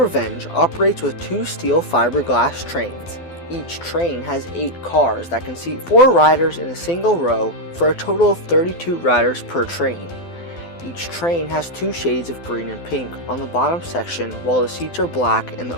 operates with 2 steel fiberglass trains. Each train has 8 cars that can seat 4 riders in a single row for a total of 32 riders per train. Each train has 2 shades of green and pink on the bottom section, while the seats are black and the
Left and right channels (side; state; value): right; late; 12 ms